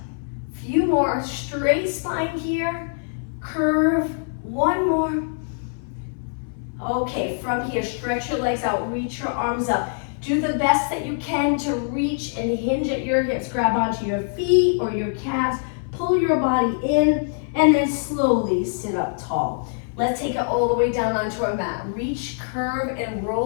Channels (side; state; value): right; silent; 59 dB below the other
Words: Few more, straight spine here, curve, 1 more. Okay, from here, stretch your legs out, reach your arms up. Do the best that you can to reach and hinge at your hips. Grab onto your feet or your calves, pull your body in, and then slowly sit up tall. Let's take it all the way down onto our mat. Reach, curve, and